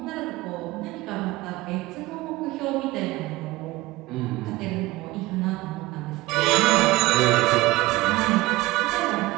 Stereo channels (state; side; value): quieter; left; 19.5 dB